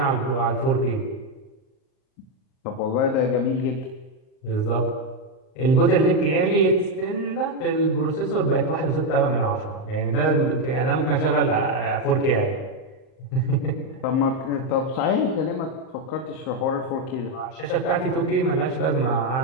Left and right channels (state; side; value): late; right; 38 ms